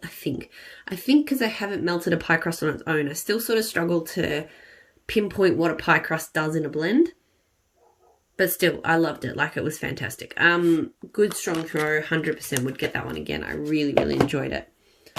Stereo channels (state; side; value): identical; both; correlation 1.00